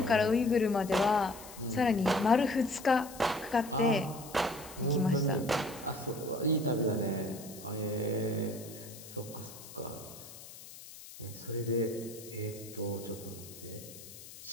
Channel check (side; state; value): left; noise; hiss, 16 dB below the sound